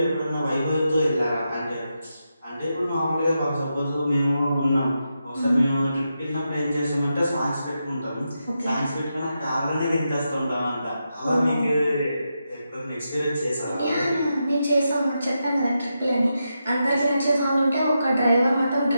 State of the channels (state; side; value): inverted; both; correlation -0.86